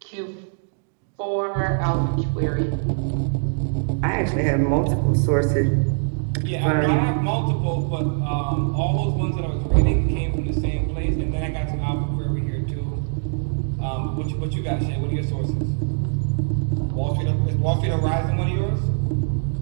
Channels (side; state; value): left; silent; digital silence